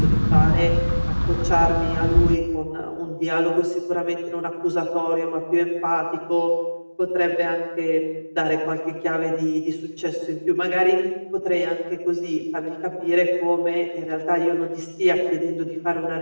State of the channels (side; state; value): both; inverted; correlation -1.00